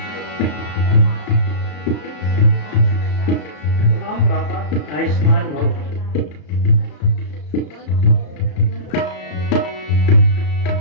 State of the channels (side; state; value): right; late; 34 ms